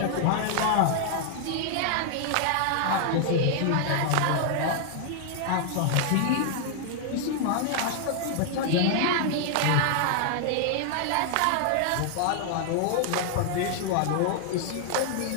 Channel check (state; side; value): different; both; correlation 0.00